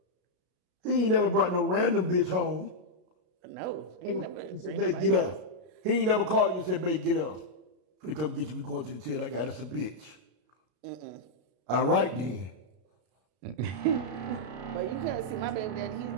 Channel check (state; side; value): late; left; 33 ms